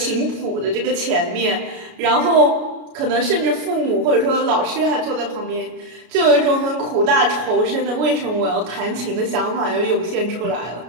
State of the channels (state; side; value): late; left; 33 ms